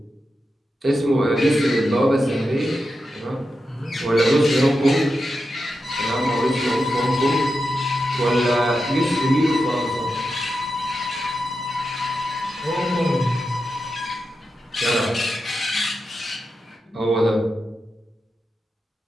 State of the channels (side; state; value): both; normal; correlation 0.89